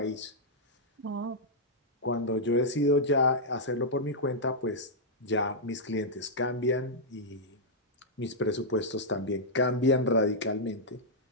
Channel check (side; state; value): both; normal; correlation -0.08